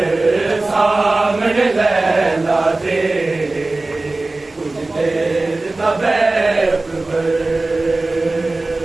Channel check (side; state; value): left; quieter; 3.1 dB